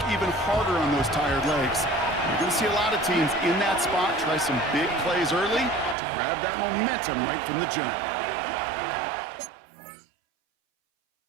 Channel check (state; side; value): drops out; left; at 6.0 s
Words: even harder on those tired legs. You're going to see a lot of teams in that spot try some big plays early to grab that momentum right from the jump.